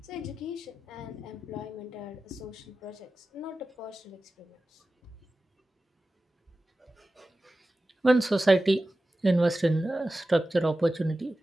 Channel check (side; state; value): both; normal; correlation 0.95